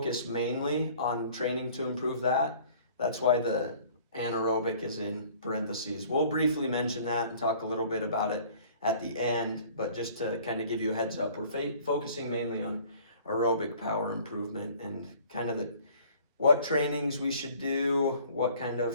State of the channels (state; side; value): inverted; both; correlation -0.52